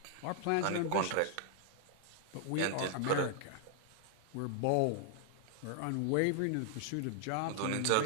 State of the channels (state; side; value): different; both; correlation 0.00